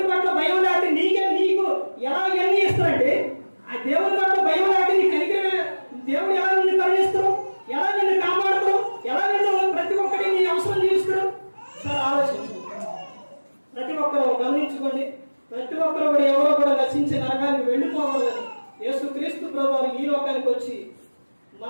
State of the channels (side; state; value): both; inverted; correlation -1.00